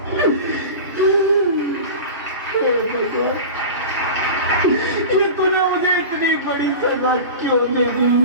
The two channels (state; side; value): inverted; both; correlation -0.32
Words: ये तूने मुझे इतनी बड़ी सजा क्यों दे दी?